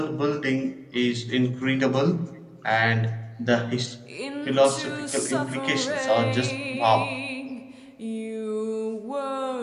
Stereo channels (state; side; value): identical; both; correlation 1.00